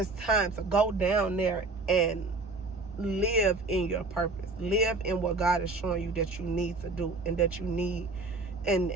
time to go down there and live in your purpose. Live in what God is showing you that you need to do, and that you need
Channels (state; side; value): quieter; left; 3.4 dB